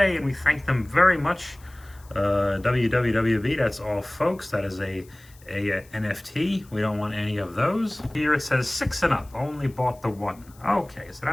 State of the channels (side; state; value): left; noise; hiss, 27 dB below the sound